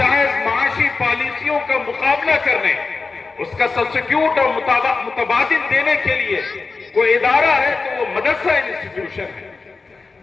معاشی پالیسیوں کا مقابلہ کرنے، اس کا سبسٹیوٹ اور متبادل دینے کے لیے کوئی ادارہ ہے تو وہ مدرسہ انسٹیٹیوشن ہے۔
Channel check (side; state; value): right; quieter; 4.2 dB